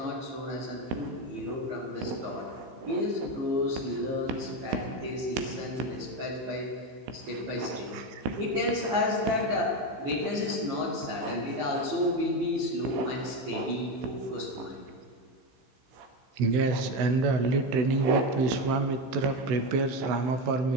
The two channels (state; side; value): late; left; 16 ms